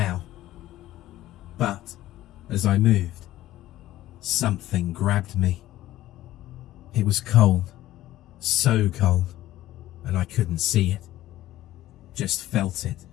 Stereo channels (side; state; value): right; quieter; 14.9 dB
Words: But, as I moved, something grabbed me. It was cold, so cold, and I couldn't see it, just felt it.